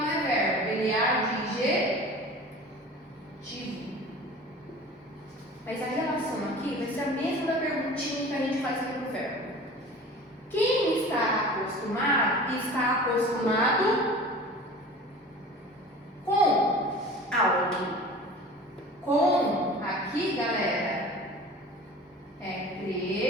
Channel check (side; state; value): both; normal; correlation 0.40